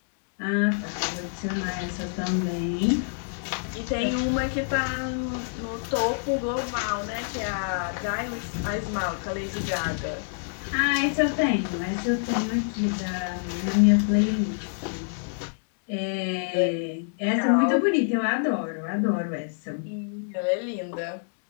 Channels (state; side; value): silent; right; digital silence